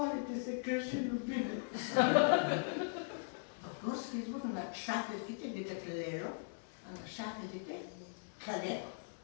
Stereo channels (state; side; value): silent; right; digital silence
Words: ти се, кажи Любимец. В Горски Извор на шаферките викат Лело, а на шаферите Калеро.